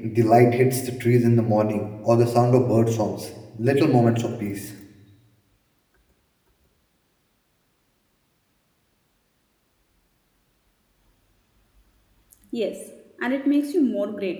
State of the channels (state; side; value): identical; both; correlation 1.00